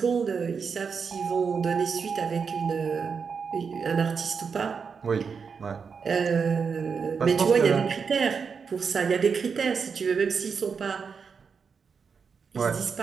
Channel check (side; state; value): left; quieter; 5.9 dB